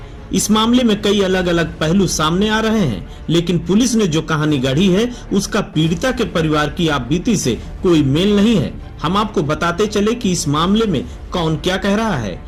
इस मामले में कई अलग अलग पहलू सामने आ रहे हैं, लेकिन पुलिस ने जो कहानी गढ़ी है उसका पीड़िता के परिवार की आपबीती से कोई मेल नहीं है। हम आपको बताते चले कि इस मामले में कौन क्या कह रहा है।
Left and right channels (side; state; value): both; identical; correlation 1.00